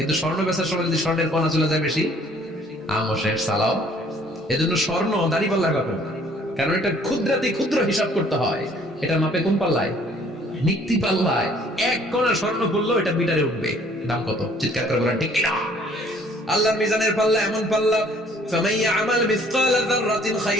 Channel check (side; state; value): both; normal; correlation 0.58